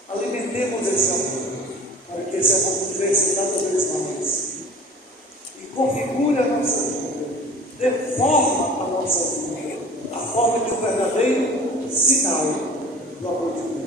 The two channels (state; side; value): normal; both; correlation 0.43